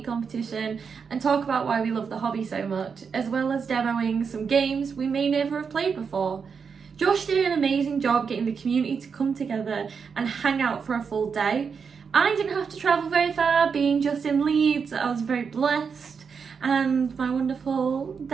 competition, and talk about why we love the hobby so much, as well as demoing some games we may never have played before. Josh did an amazing job getting the community to come together and hang out for a full day. I didn't have to travel very far, being just in Leeds. I was very blessed. And my wonderful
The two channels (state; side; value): quieter; left; 6.0 dB